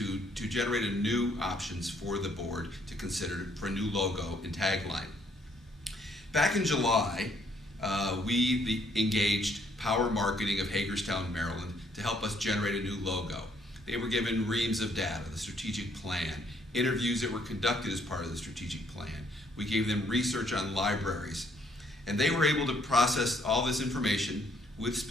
generate a new options for the board to consider for a new logo and tagline. Back in July, we engaged Power Marketing of Hagerstown, Maryland, to help us generate a new logo. They were given reams of data, the strategic plan, interviews that were conducted as part of the strategic plan. We gave them research on libraries, and they were able to process all this information with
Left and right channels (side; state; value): both; normal; correlation 0.67